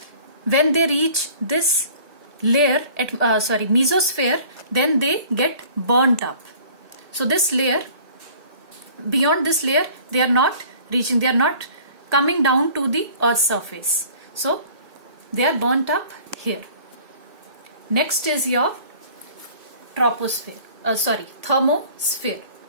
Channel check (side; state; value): left; late; 1.8 ms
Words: when they reach this layer, mesosphere, then they get burnt up. So this layer, beyond this layer, they are not reaching, they are not coming down to the Earth's surface. So they are burnt up here. Next is your thermosphere.